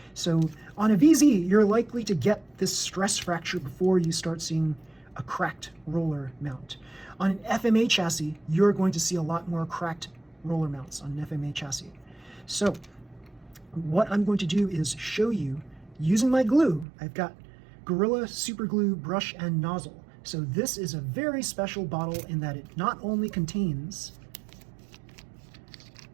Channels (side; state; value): left; drops out; at 16.9 s